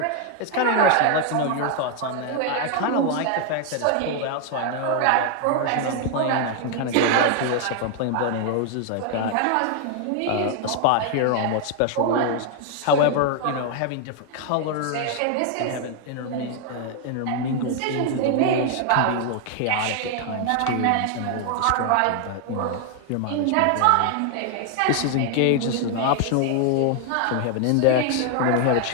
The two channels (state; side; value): different; both; correlation 0.00